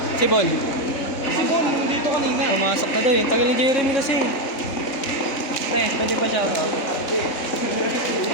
Si Bon. Si Bon, dito kanina. Pumasok na daw eh. Tagal ni Jeremy kasi. Pwede pa shout out.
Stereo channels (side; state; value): right; late; 3.7 ms